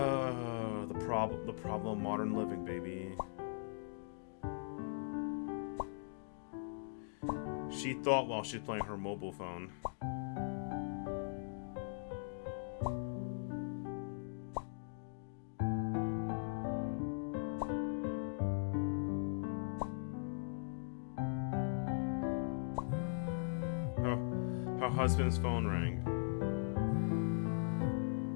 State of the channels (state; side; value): silent; right; digital silence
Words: problem of modern living, baby. She thought while she's playing her mobile phone. Her husband's phone rang.